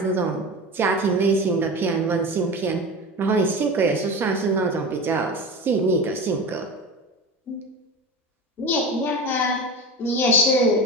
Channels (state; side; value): normal; both; correlation 0.28